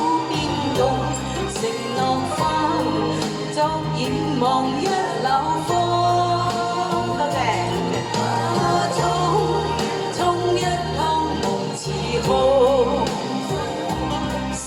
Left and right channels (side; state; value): both; identical; correlation 1.00